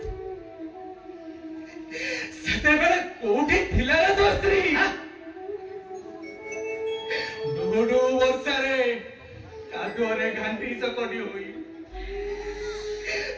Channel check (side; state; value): both; identical; correlation 1.00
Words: सेते बेले कोठी थिला रे तो स्त्री डोडो वर्षारे कादुरे घांटी चकटी होई